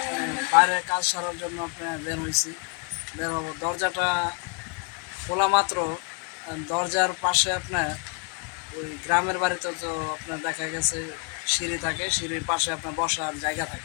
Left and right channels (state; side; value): quieter; right; 35.9 dB